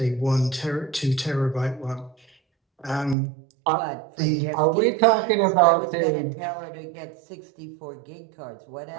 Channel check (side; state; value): left; drops out; at 3.2 s